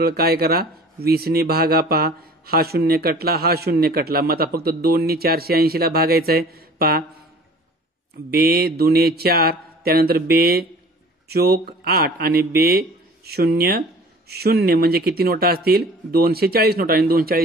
काय करा? 20 ने भागा. पहा हा शून्य कटला, हा शून्य कटला. मग आता फक्त 2 ने 480ला भागायचं आहे. पहा बे दुने 4, त्यानंतर बे चोक 8 आणि बे 0 0 म्हणजे किती नोटा असतील? 240 नोटा आणि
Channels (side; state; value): both; normal; correlation 0.47